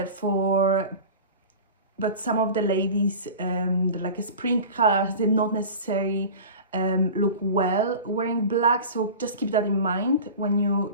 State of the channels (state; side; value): inverted; both; correlation -0.35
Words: but some of the ladies, like a spring colors, they're not necessarily look well wearing black. So just keep that in mind when you're